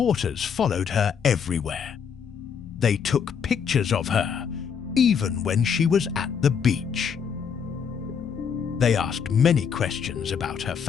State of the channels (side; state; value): right; quieter; 7.0 dB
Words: followed her everywhere. They took pictures of her, even when she was at the beach. They asked many questions about her